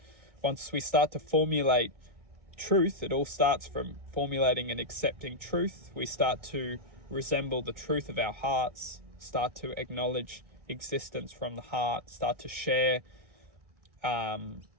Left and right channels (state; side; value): late; left; 1.8 ms